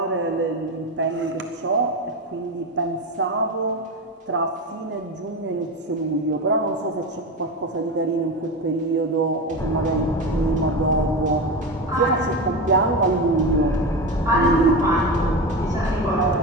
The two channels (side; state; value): both; normal; correlation 0.21